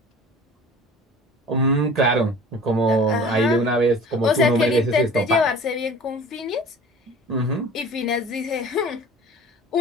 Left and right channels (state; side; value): normal; both; correlation 0.42